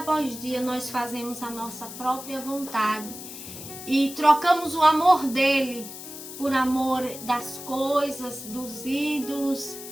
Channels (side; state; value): left; noise; hiss, 12 dB below the sound